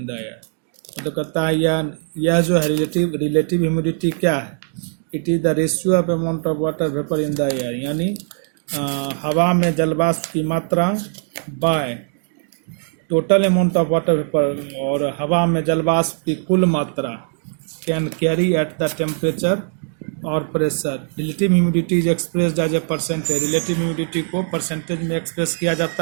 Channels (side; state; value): left; silent; digital silence